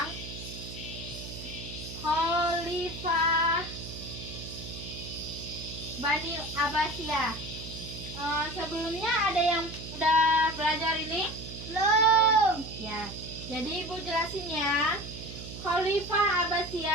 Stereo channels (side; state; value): right; noise; hum, 11 dB below the sound